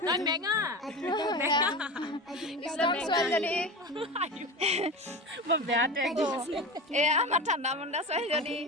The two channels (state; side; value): normal; both; correlation 0.27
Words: তই মেঙা ইছলাম ছোৱালীজনী মই বেয়া টেগ এয়া আমাৰ ঠাণ্ডা মণ্ডা ছোৱালীজনী